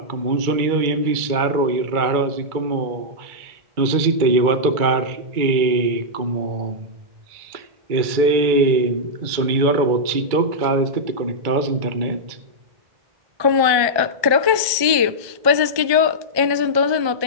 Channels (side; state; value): left; late; 1.2 ms